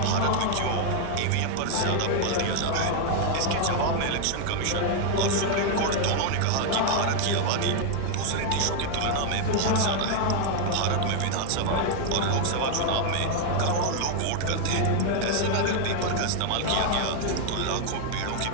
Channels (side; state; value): both; different; correlation 0.00